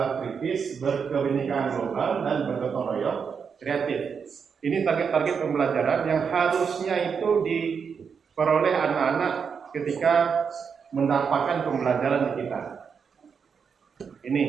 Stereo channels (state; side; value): quieter; left; 6.3 dB